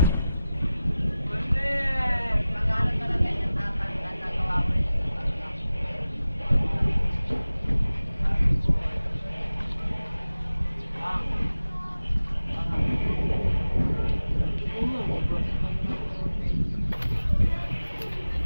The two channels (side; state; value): both; inverted; correlation -0.96